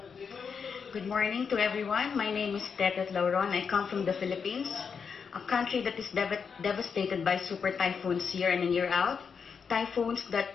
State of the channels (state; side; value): quieter; right; 6.1 dB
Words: Good morning to everyone. My name is Tetet Lauron. I come from the Philippines, a country that is devastated by super typhoons year in and year out. Typhoons that